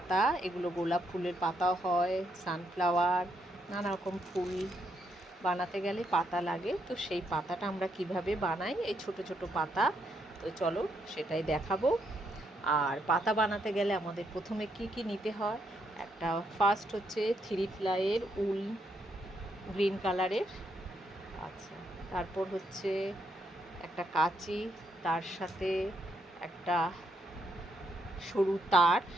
এগুলো গোলাপ ফুলের পাতাও হয়, সানফ্লাওয়ার, নানা রকম ফুল বানাতে গেলে পাতা লাগে। তো সেই পাতাটা আমরা কিভাবে বানাই, এই ছোট ছোট পাতা। তো চলো সেটাই দেখাবো। আর পাতা বানাতে গেলে আমাদের প্রথমে কি কি নিতে হয়, একটা ফার্স্ট হচ্ছে 3 প্লাইয়ের উল গ্রিন কালারের। আচ্ছা, তারপর হচ্ছে একটা কাঁচি, তার সাথে একটা সরু তার,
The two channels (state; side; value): normal; both; correlation 0.77